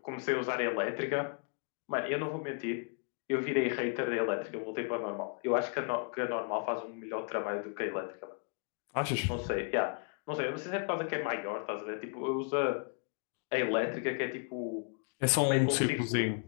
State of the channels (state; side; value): quieter; right; 38.1 dB